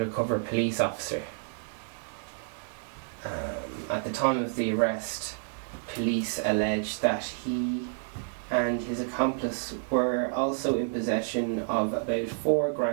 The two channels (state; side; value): silent; left; 58 dB below the other